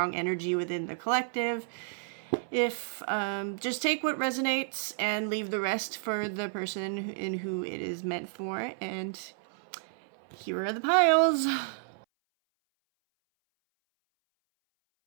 energy within the collective. If just take what resonates and leave the rest for the person in who it is meant for. And here are the piles.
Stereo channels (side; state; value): left; silent; 57 dB below the other